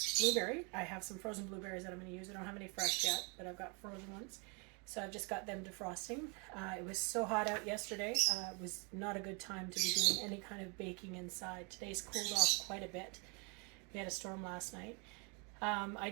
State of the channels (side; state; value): left; quieter; 33.2 dB